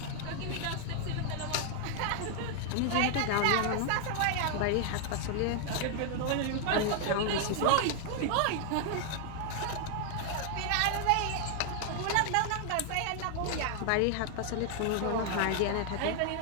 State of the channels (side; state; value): both; different; correlation 0.00